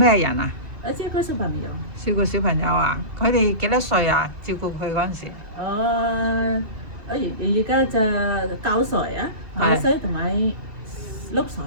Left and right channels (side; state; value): left; late; 2.7 ms